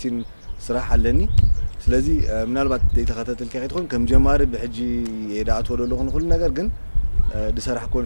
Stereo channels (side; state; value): both; inverted; correlation -1.00